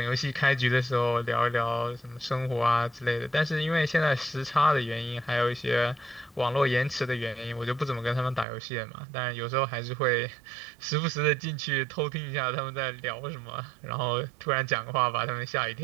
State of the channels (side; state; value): left; drops out; at 8.5 s